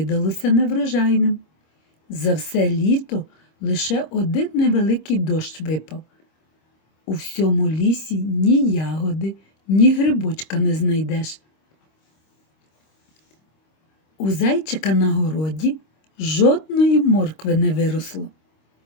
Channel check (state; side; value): late; right; 26 ms